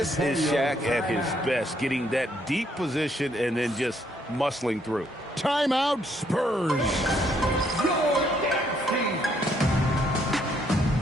is Shaq at his best, getting that deep position and then just muscling through. Timeout, Spurs.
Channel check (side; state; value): both; normal; correlation 0.70